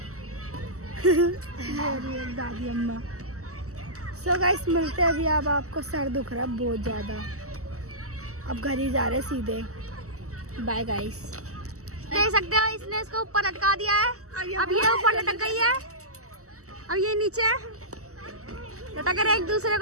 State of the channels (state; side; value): late; left; 0.65 ms